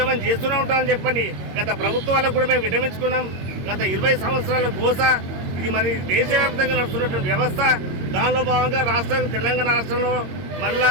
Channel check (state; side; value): late; left; 22 ms